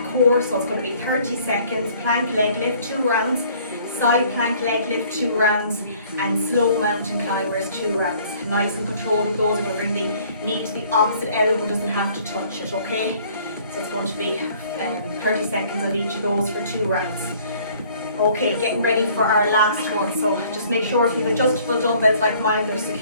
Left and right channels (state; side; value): inverted; both; correlation -0.57